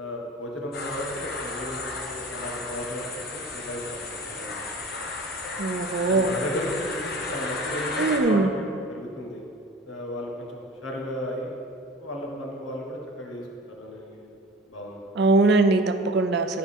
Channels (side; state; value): both; normal; correlation 0.40